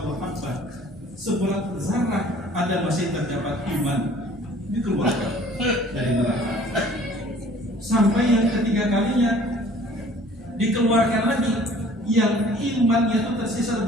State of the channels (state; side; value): normal; both; correlation 0.52